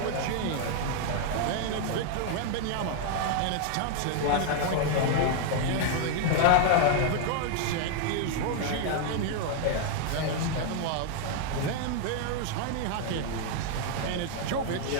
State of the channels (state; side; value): different; both; correlation 0.00